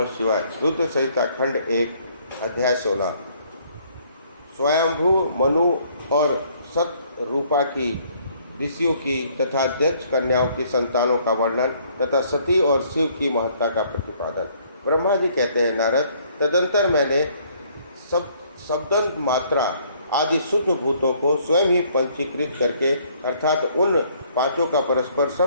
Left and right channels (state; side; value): inverted; both; correlation -0.63